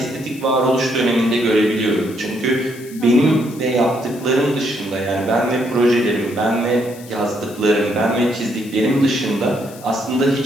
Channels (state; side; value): noise; left; hiss, 20 dB below the sound